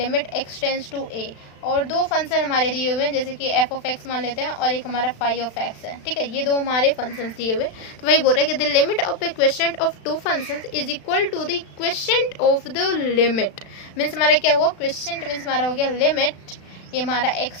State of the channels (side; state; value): right; late; 36 ms